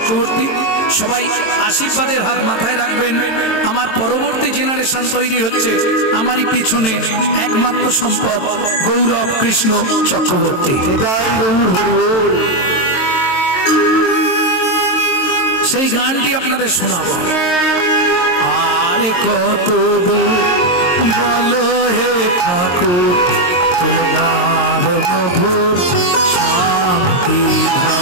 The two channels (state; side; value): late; right; 23 ms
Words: সবাই আশীর্বাদের হাত মাথায় রাখবেন। আমার পরবর্তী জেনারেশন তৈরি হচ্ছে, আমারই পিছনে একমাত্র সম্পদ গৌরব কৃষ্ণ চক্রবর্তী। সেই গানটি আপনাদের শোনাবো। আরে কত দূর বলো হে ঠাকুর তোমার মধুর শান্তি